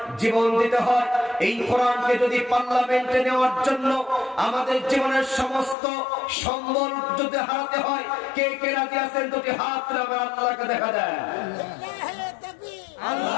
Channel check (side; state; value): right; drops out; at 5.8 s